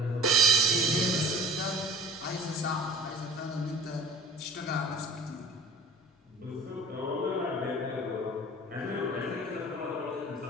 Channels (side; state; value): both; normal; correlation 0.44